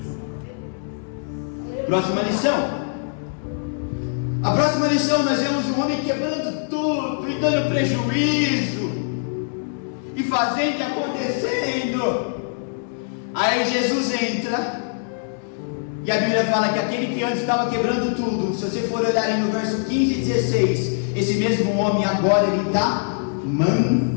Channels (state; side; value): silent; right; digital silence